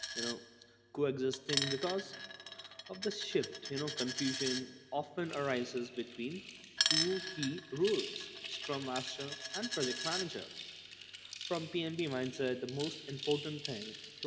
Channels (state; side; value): identical; both; correlation 1.00